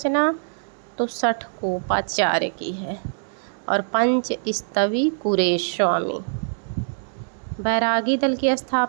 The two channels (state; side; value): silent; left; digital silence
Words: तो षटकोपाचार्य की है। और पंच स्तवी कुरेश स्वामी। बैरागी दल की